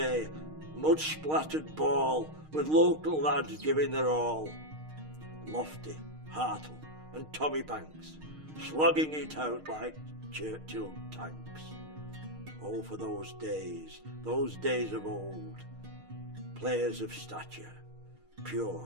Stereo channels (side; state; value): left; late; 6.5 ms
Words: mud-splattered ball, with local lads giving their all. Lofty, Hartle and Tommy Banks, slugging it out like Churchill tanks. Oh, for those days of old, players of stature,